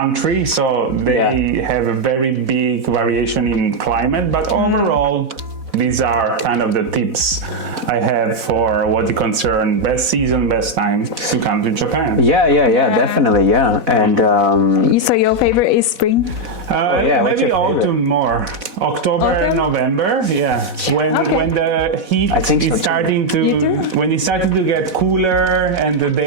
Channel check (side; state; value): left; late; 4.1 ms